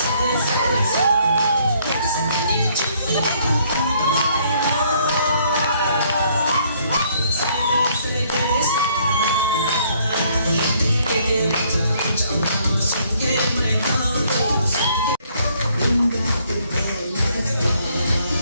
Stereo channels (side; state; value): both; inverted; correlation -0.66